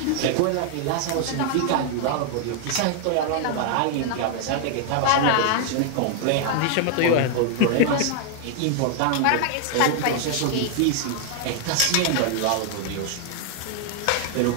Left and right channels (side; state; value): both; different; correlation 0.00